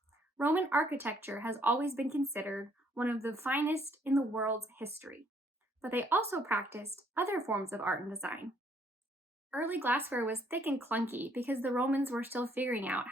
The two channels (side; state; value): both; normal; correlation 0.66